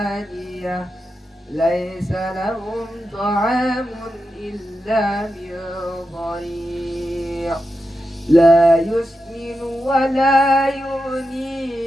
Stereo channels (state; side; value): normal; both; correlation 0.89